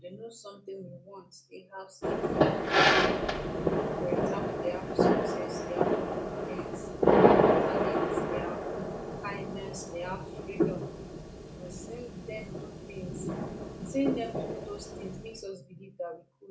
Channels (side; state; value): both; identical; correlation 1.00